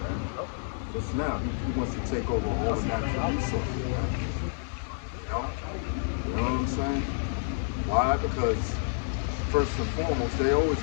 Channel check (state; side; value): silent; right; digital silence